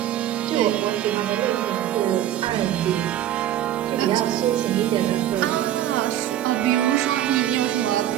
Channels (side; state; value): left; quieter; 12.0 dB